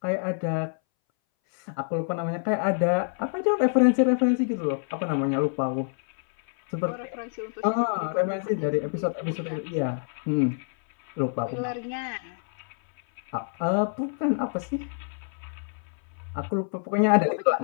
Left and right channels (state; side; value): silent; right; 60 dB below the other